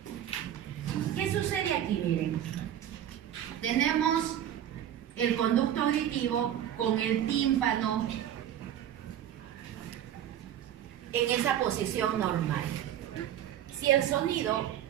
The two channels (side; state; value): left; quieter; 10.8 dB